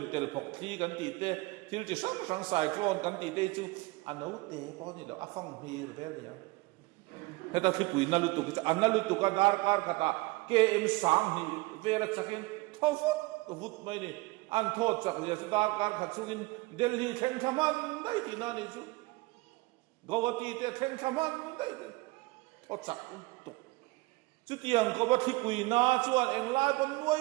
tel phok thi kan ti te thil chi sang cyclone kan ti te chu anau te po ni lo afang hir vel ya heta khipui na lu tu ka analu tu ka dar kar khata km sang hi vela chakin thofot vut mai ni an thot chak le dar kar khachungin delhi theng thaman dai ti na ni chu gawati te theng thaman dai thot chak tu chu tiang ko ba khipui na chuan eng lai pon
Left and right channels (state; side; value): quieter; left; 22.7 dB